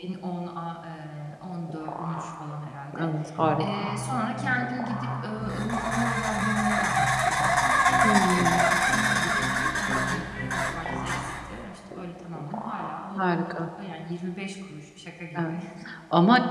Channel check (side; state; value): both; identical; correlation 1.00